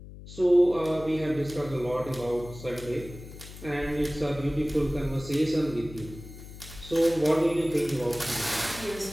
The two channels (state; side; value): noise; left; hum, 15 dB below the sound